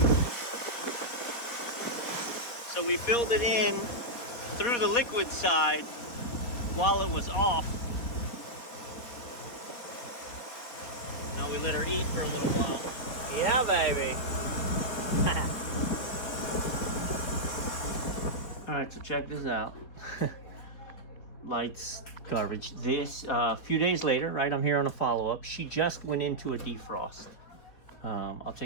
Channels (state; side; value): late; right; 4.2 ms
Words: So we filled it in through the liquid side while it was off. Now we let her eat for a little while. Yeah, baby. All right, so check this out. Lights, garbage. This, a few days later, right, I'm here on a follow-up. She just went into a defrost. I'll